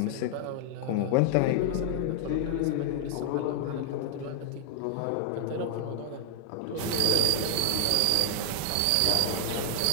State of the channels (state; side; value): different; both; correlation 0.00